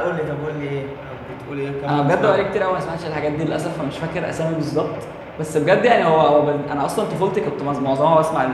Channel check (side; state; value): both; identical; correlation 1.00